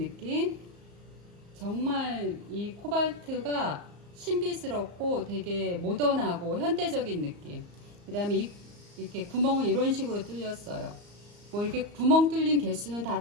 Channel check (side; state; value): left; late; 34 ms